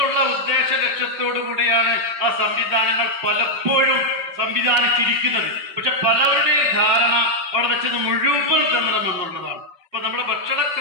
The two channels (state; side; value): late; left; 5.6 ms